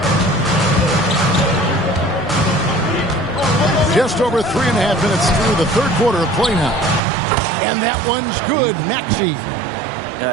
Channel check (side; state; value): left; drops out; at 7.0 s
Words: Just over 3.5 minutes through the third quarter of play now. And that one's good. Maxey.